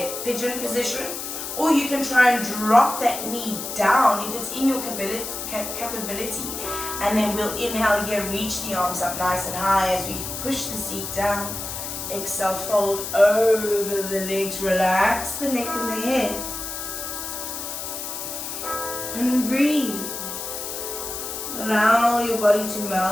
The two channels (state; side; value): noise; left; hiss, 6 dB below the sound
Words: pigeon position, or you can try and drop that knee down if it's in your capability. And then we'll inhale here, reach the arms up nice and high as we push the seat down. Exhale, fold over the legs, relax the neck and the head. And breathe. Allow your body to